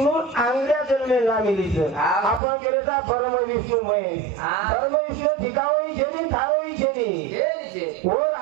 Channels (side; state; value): left; drops out; at 2.4 s